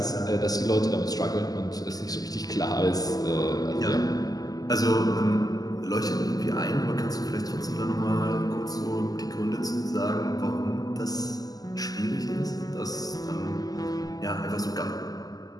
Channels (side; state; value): right; late; 0.18 ms